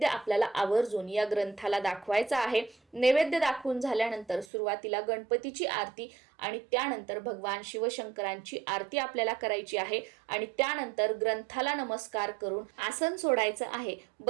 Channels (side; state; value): left; drops out; at 4.5 s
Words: आपल्याला आवर्जून या ग्रंथाला दाखवायचा आहे. नैवेद्य दाखवून झाल्यानंतर सुरुवातीला गणपतीची आरती आणि त्यानंतर भगवान शिवशंकरांची आरती आपल्याला करायची आहे आणि त्यानंतर ग्रंथाला नमस्कार करून आसन सोडायचं आहे.